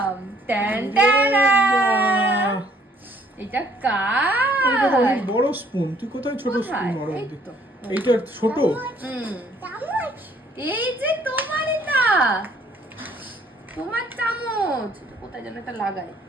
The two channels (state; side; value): normal; both; correlation 0.62